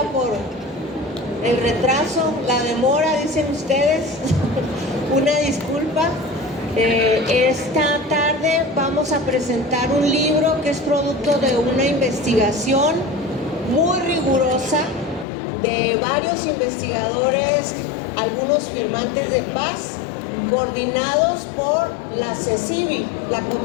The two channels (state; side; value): drops out; right; at 15.2 s